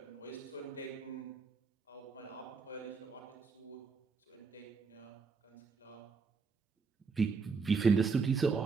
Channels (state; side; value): quieter; left; 4.8 dB